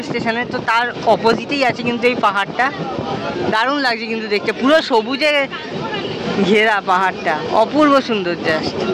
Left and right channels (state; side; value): identical; both; correlation 1.00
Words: স্টেশনে। তো তার অপোজিটেই আছে কিন্তু এই পাহাড়টা। দারুণ লাগছে কিন্তু দেখতে, পুরো সবুজে ঘেরা পাহাড়টা, অপূর্ব সুন্দর জাস্ট।